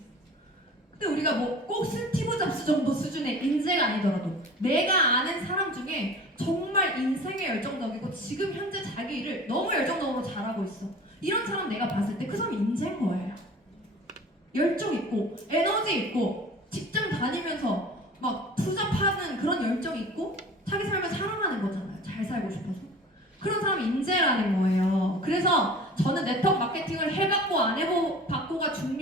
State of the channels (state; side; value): normal; both; correlation 0.42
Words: 근데 우리가 뭐 꼭 스티브 잡스 정도 수준의 인재가 아니더라도 내가 아는 사람 중에 정말 인생에 열정적이고 지금 현재 자기 일을 너무 열정적으로 잘하고 있어. 이런 사람 내가 봤을 때 그 사람이 인재인 거예요. 열정 있고 에너지 있고 직장 다니면서 막 투잡하는 그런 열정 있고 자기 삶을 사랑하는 거잖아요. 잘 살고 싶어서. 그런 사람이 인재라는 거예요. 그래서 저는 네트워크 마케팅을 해봤고 안 해봤고 맞고가